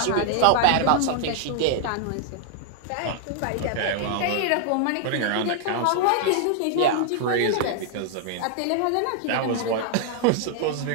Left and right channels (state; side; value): different; both; correlation 0.00